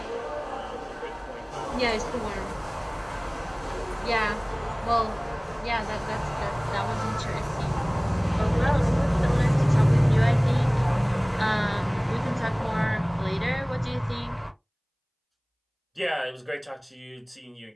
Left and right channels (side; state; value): both; identical; correlation 1.00